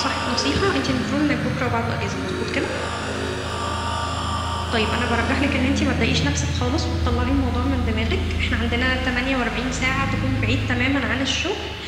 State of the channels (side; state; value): both; identical; correlation 1.00